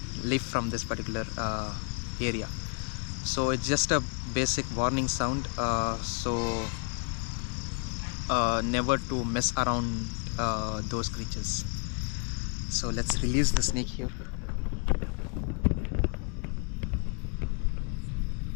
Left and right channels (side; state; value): right; quieter; 36.7 dB